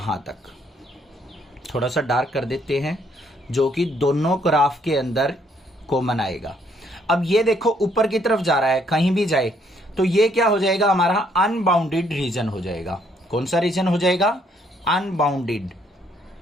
तक। थोड़ा सा डार्क कर देते हैं, जो कि दोनों ग्राफ के अंदर कॉमन आएगा। अब ये देखो ऊपर की तरफ जा रहा है, कहीं भी जाए तो ये क्या हो जाएगा हमारा, अनबाउंडेड रीजन हो जाएगा। कौन सा रीजन हो जाएगा, अनबाउंडेड,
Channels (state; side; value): normal; both; correlation 0.68